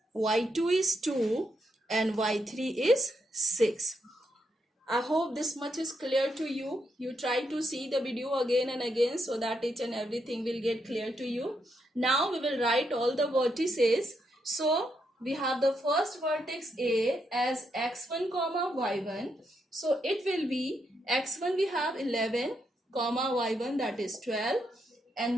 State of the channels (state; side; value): normal; both; correlation 0.80